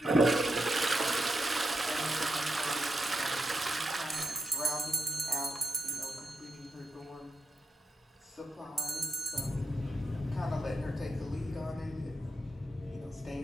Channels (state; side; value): normal; both; correlation 0.85